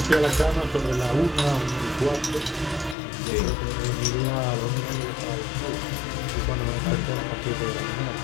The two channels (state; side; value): drops out; right; at 3.0 s